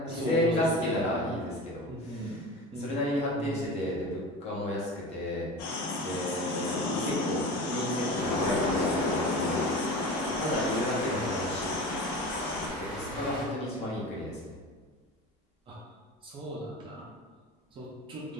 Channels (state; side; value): normal; both; correlation 0.32